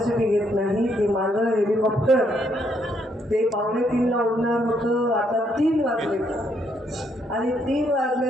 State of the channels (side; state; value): both; normal; correlation 0.73